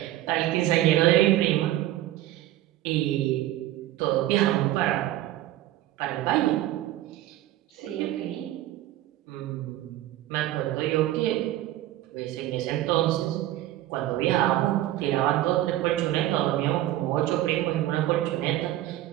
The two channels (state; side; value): quieter; left; 14.6 dB